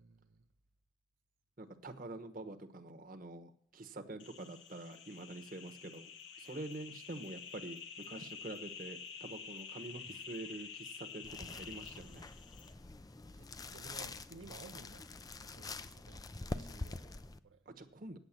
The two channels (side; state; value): both; normal; correlation 0.44